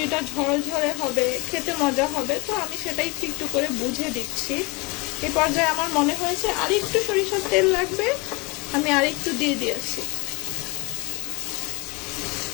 ঝরঝরে হবে, খেতে মজা হবে। তো আমি সেটাই একটু একটু করে বুঝে দিচ্ছি। এই পর্যায়ে আমার মনে হয়েছে আর একটু সরিষার তেল লাগবে, আমি আর একটু দিয়ে দিয়েছি।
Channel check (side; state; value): right; quieter; 27.5 dB